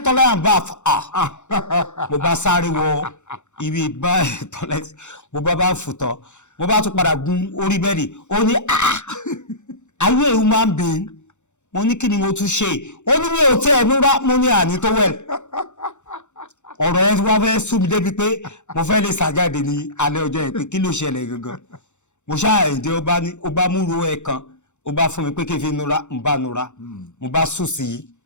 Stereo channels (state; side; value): late; right; 0.84 ms